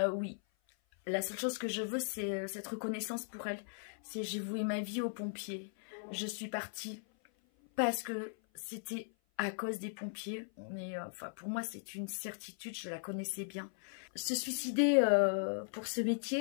Oui. La seule chose que je veux, c'est cette reconnaissance pour elle. C'est j'ai voué ma vie aux pompiers. Je suis partie parce que c'était à cause des pompiers. Mais enfin, pour moi, c'est une certitude, je la connaissais bien. Se suicider pour ce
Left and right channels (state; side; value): silent; right; 53 dB below the other